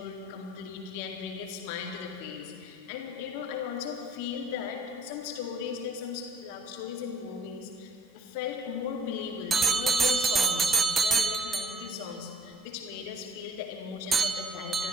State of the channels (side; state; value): both; normal; correlation 0.60